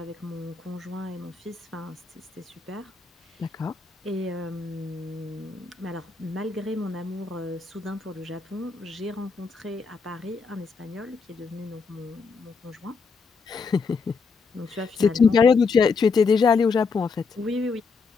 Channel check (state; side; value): quieter; right; 4.9 dB